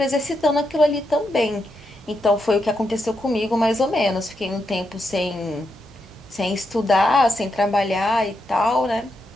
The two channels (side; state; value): both; normal; correlation 0.83